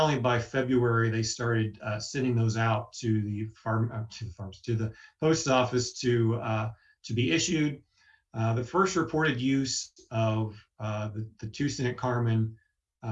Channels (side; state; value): both; identical; correlation 1.00